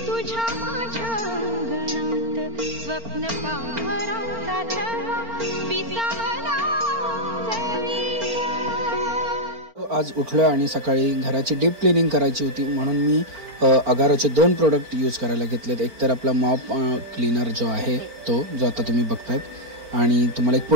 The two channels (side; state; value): left; late; 4.4 ms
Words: तुझ्या माझ्या अंगणात स्वप्न पांघराचा छळा विसावला आज उठलो आणि सकाळी घराची डीप क्लिनिंग करायची होती म्हणून मी अगारोचे 2 प्रोडक्ट यूज करायला घेतलेत. एक तर आपला मॉप क्लीनर जो आहे तो जो आता तुम्ही बघतायत आणि तुम्हाला एक